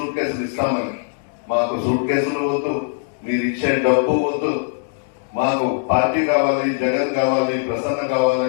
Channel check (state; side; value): silent; right; 65 dB below the other